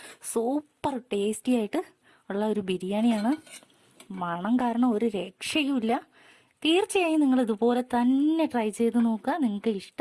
സൂപ്പർ ടേസ്റ്റി ആയിട്ട് ഉള്ള ഒരു ബിരിയാണിയാണ്. മണം കാരണം ഒരു രക്ഷയുമില്ല. തീർച്ചയായും നിങ്ങൾ ഇതുപോലെ തന്നെ ട്രൈ ചെയ്ത് നോക്കുക. നിങ്ങൾക്ക്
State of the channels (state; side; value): identical; both; correlation 1.00